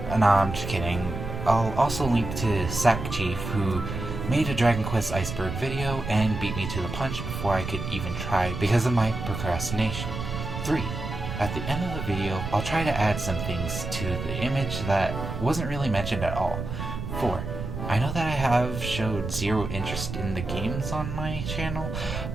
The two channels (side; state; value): right; noise; rumble, 6 dB below the sound